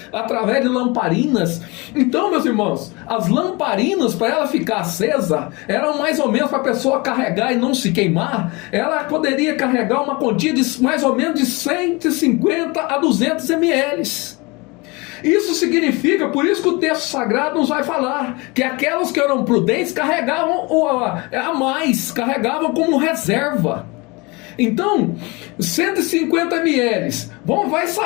através de lamparinas. Então, meus irmãos, as lamparinas, para ela ficar acesa, eram mais ou menos para a pessoa carregar e não se queimar, ela poderia carregar uma quantia de mais ou menos de 150 a 200 ml. Isso significa, por isso que o texto sagrado nos vai falar, que aquelas que eram prudentes carregavam a mais, carregavam como reserva. Então, 150 ml, vai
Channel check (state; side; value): quieter; right; 26.0 dB